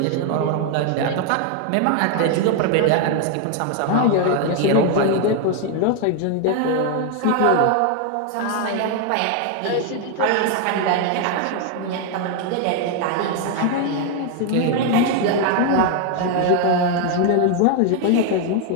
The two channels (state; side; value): different; both; correlation 0.01